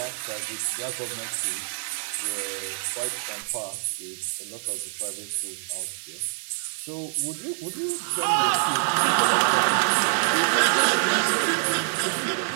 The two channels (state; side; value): silent; left; digital silence